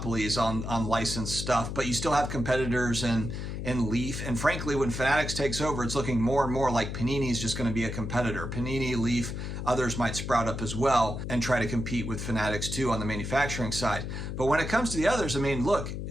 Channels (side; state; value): left; noise; hum, 5 dB below the sound